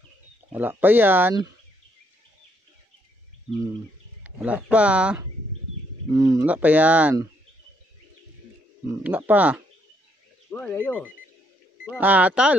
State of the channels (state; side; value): normal; both; correlation 0.72